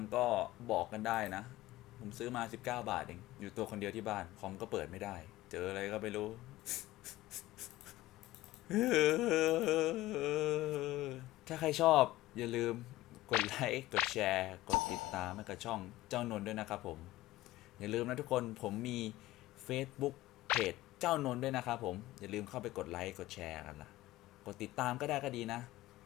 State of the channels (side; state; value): right; quieter; 16.9 dB